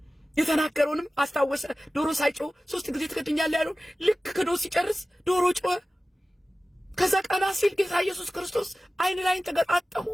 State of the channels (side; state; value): both; normal; correlation 0.96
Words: የተናገረውንም አስታወሰ። ዶሮ ሳይጮህ 3 ጊዜ ትክድኛለህ ያለውን ልክ ክዶ ሲጨርስ ዶሮ ጮኸ። ከዛ ቀና ሲል ጌታ ኢየሱስ ክርስቶስ አይን ላይን ተገጣጠሙ።